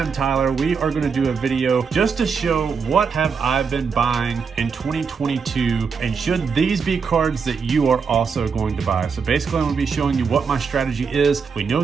Tyler. We are going to do a video just to show what have I been buying in 2022 and should these be cards that you are also going to buy. So basically I'm going to be showing you what my strategy is. We know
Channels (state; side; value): quieter; left; 5.7 dB